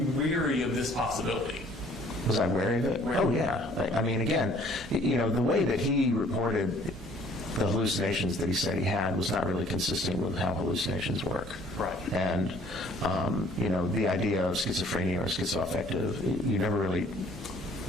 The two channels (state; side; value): normal; both; correlation 0.57